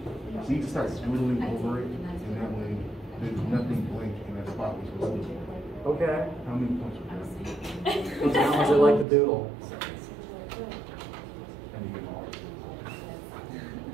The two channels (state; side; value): drops out; left; at 9.1 s